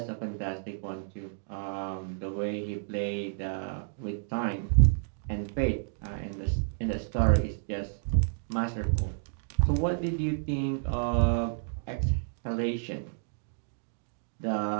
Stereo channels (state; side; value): silent; left; digital silence